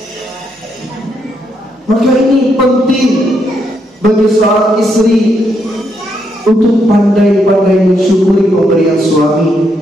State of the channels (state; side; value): normal; both; correlation 0.77